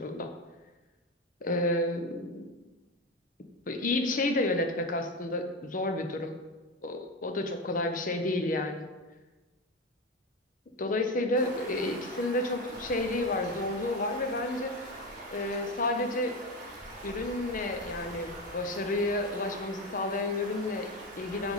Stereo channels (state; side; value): normal; both; correlation 0.19